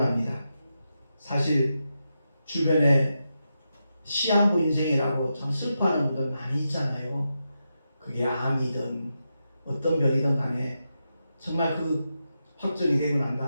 사실 주변에 시한부 인생이라고 참 슬퍼하는 분들 많이 있잖아요. 그게 암이든 어떤 병이든 간에 정말 그 확정이 되고 난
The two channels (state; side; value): inverted; both; correlation -0.88